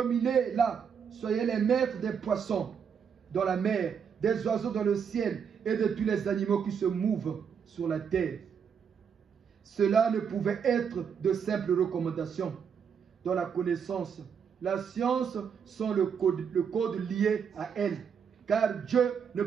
Soyez les maîtres des poissons dans la mer, des oiseaux dans le ciel et de tous les animaux qui se mouvent sur la terre. Cela ne pouvait être de simples recommandations. Dans la connaissance, la science sont le code lié à elle, car Dieu ne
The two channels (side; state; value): left; quieter; 7.1 dB